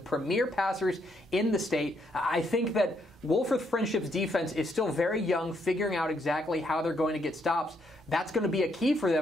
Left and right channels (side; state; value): both; normal; correlation 0.74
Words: passers in the state. I think that Wolfforth Friendship's defense is still very young, figuring out exactly how they're going to get stops. That's going to be a key for